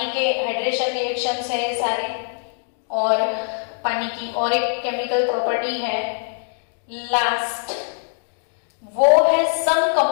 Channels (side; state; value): right; silent; digital silence